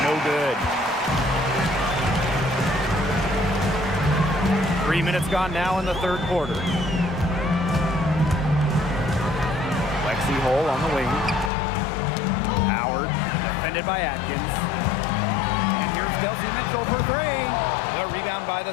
no good. 3 minutes gone now in the third quarter. Lexi Hole on the wing. Howard, defended by Atkins. And here's Kelsey Mitchell for three. The rebound by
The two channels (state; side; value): drops out; right; at 11.5 s